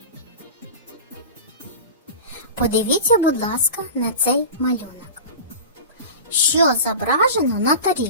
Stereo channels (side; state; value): both; inverted; correlation -0.33